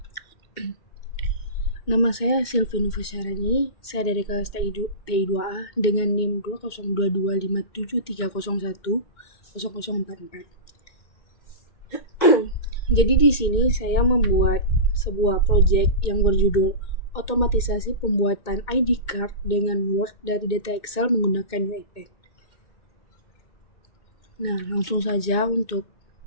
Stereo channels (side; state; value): right; late; 2.2 ms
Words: Nama saya Silvi Nufasyarani, saya dari kelas TI2A dengan NIM 202257301044. Jadi di sini saya membuat sebuah proyek yang berjudul otomatisasi pembuatan ID card dengan Word dari data Excel menggunakan UiPath. Nah, langsung saja untuk